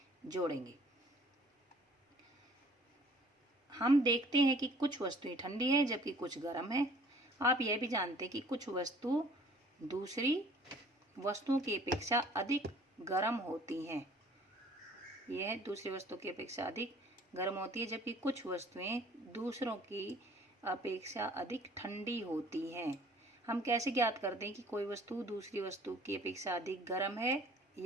जोड़ेंगे। हम देखते हैं कि कुछ वस्तुएं ठंडी है जबकि कुछ गर्म है। आप यह भी जानते हैं कि कुछ वस्तु दूसरी वस्तुओं की अपेक्षा अधिक गर्म होती हैं। यह दूसरी वस्तु की अपेक्षा अधिक गर्म होती है, जबकि कुछ वस्तुएं दूसरों की अपेक्षा अधिक ठंडी होती हैं। हम कैसे ज्ञात करते हैं कि कोई वस्तु दूसरी वस्तु की अपेक्षा अधिक गर्म है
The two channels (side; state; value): both; normal; correlation 0.53